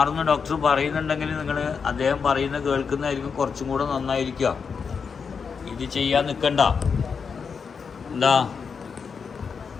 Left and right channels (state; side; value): quieter; right; 5.9 dB